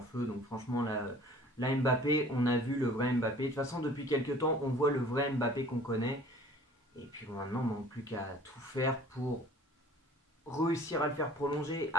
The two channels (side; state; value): both; normal; correlation 0.49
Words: feu. Donc franchement, là Mbappé, on a vu le vrai Mbappé. De toute façon, depuis quelques temps, on voit le vrai Mbappé qu'on connaît. Et puis bon, maintenant, on ne manque plus qu'à tout faire pour réussir à le faire prolonger.